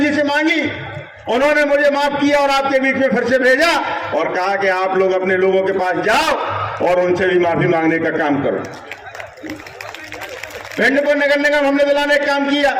जी से मांगी, उन्होंने मुझे माफ किया और आपके बीच में फिर से भेजा और कहा कि आप लोग अपने लोगों के पास जाओ और उनसे भी माफी मांगने का काम करो। भिंड को नगर निगम हमने दिलाने का काम किया,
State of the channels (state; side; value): identical; both; correlation 1.00